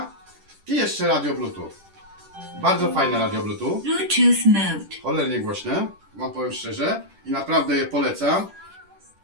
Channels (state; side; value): late; left; 10 ms